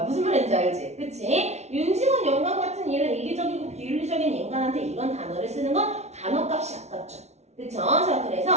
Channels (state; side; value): late; left; 0.32 ms